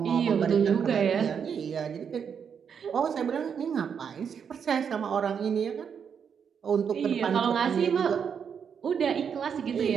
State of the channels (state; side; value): quieter; left; 7.1 dB